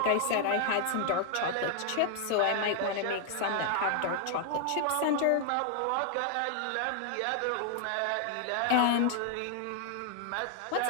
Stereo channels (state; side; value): different; both; correlation 0.00